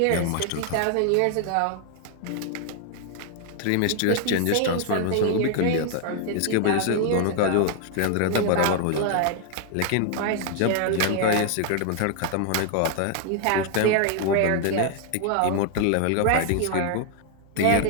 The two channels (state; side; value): different; both; correlation 0.00